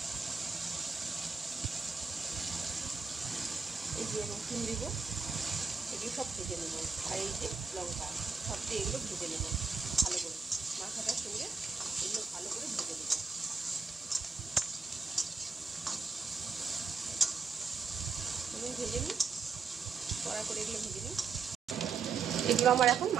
এই যে রসুন দেবো, এগুলো সব ভেজে নেব। আর এই যে লঙ্কা, সব দিয়ে এগুলো ভেজে নেব ভালো করে। মাথাটার সঙ্গে এগুলো ভালো করে ভেজে নেব। আমি ভেজে নিই, কড়া করে এগুলো ভেজে নিই। এগুলো আমার এখন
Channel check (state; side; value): quieter; left; 5.0 dB